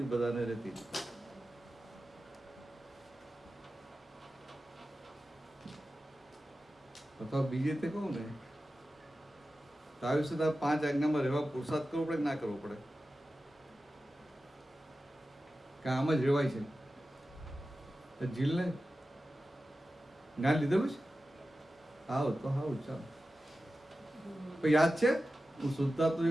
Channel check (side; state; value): both; normal; correlation 0.94